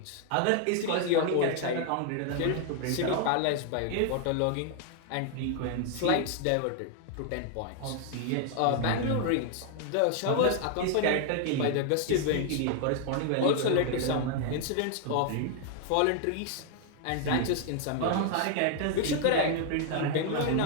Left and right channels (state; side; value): different; both; correlation 0.00